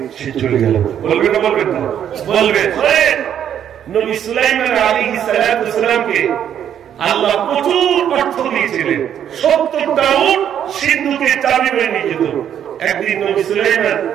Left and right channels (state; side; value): quieter; left; 9.6 dB